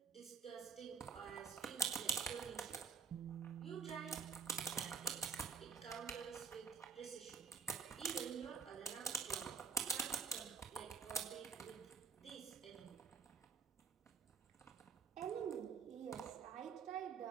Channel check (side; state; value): left; quieter; 5.8 dB